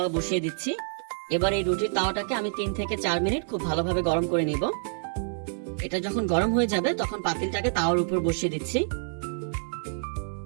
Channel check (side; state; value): left; silent; digital silence